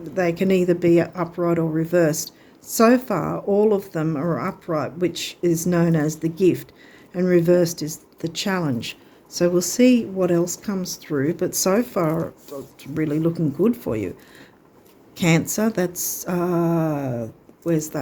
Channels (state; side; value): identical; both; correlation 1.00